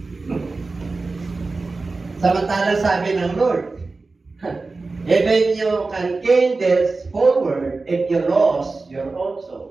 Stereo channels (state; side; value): quieter; left; 3.7 dB